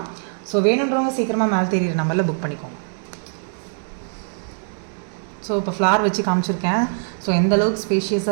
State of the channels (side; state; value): left; silent; digital silence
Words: ஸோ வேணுன்றவங்க சீக்கிரமாக மேலே தெரியுற நம்பரில் புக் பண்ணிக்கோங்க. ஸோ இப்போ ஃப்ளார் வச்சு காமிச்சிருக்கேன். ஸோ எந்த அளவுக்கு